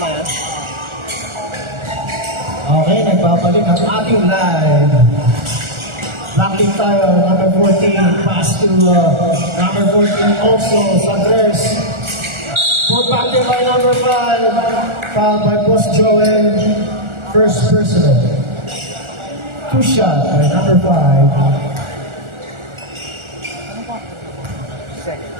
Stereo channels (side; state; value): left; late; 1.4 ms